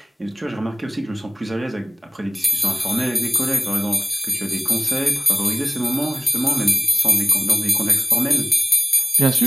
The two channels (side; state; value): both; normal; correlation 0.98